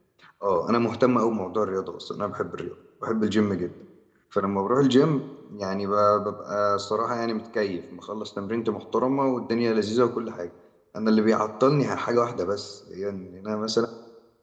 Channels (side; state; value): both; identical; correlation 1.00